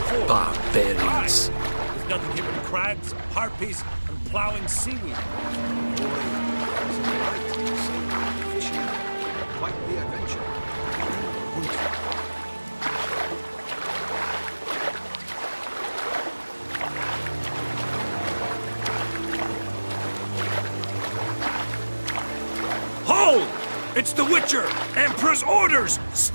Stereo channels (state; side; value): inverted; both; correlation -1.00